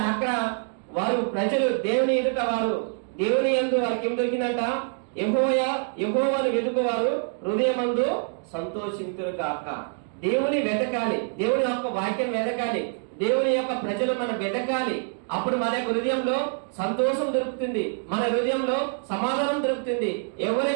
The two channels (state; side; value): silent; left; 57 dB below the other